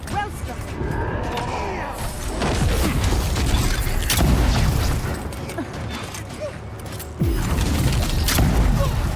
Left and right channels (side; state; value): both; identical; correlation 1.00